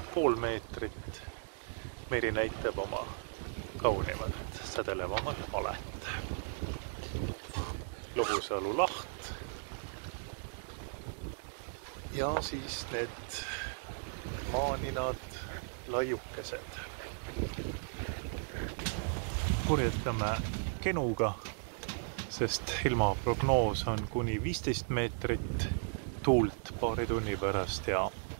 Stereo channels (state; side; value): silent; left; digital silence